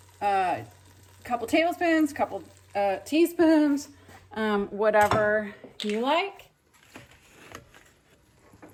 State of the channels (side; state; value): both; identical; correlation 1.00